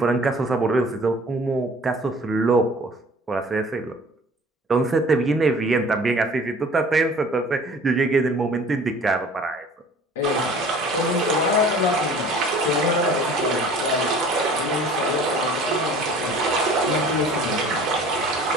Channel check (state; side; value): normal; both; correlation 0.48